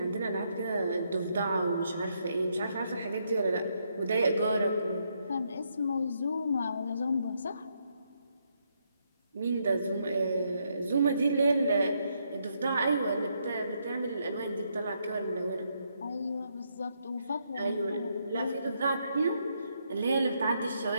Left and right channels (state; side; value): inverted; both; correlation -0.77